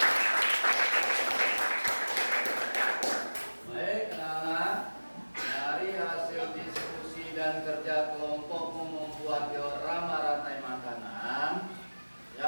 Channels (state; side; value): inverted; both; correlation -1.00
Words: Baik, anak-anak, dari hasil diskusi dan kerja kelompokmu membuat diorama rantai makanan,